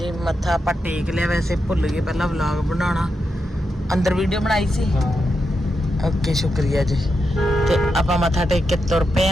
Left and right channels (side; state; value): both; normal; correlation 0.86